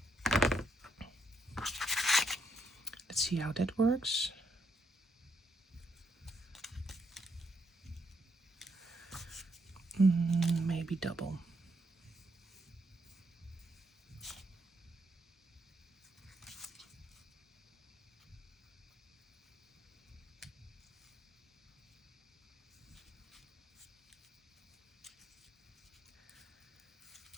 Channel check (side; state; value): both; normal; correlation 0.76